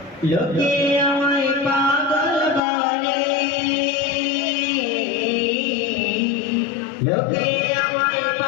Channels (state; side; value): drops out; right; at 2.6 s